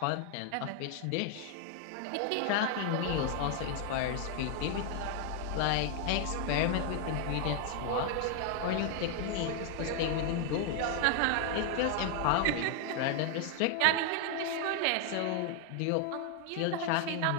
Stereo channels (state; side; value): different; both; correlation 0.00